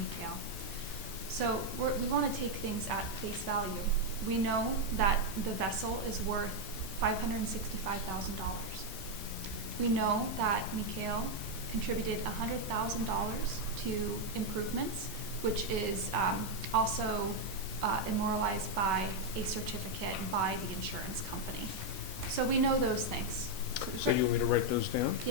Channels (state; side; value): normal; both; correlation 0.01